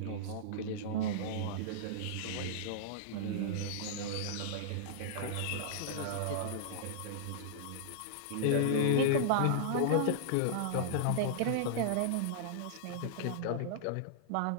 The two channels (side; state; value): both; different; correlation -0.02